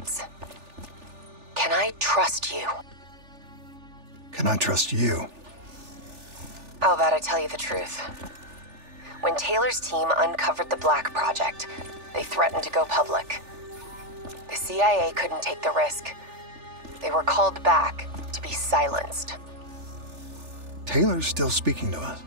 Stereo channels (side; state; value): left; late; 3.4 ms